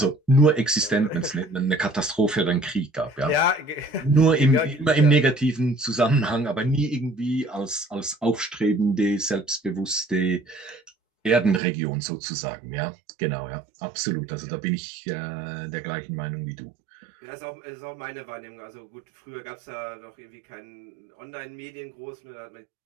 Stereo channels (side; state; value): left; drops out; at 11.6 s